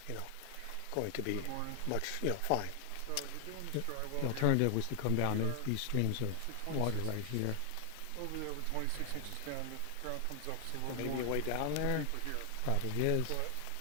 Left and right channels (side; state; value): both; different; correlation 0.00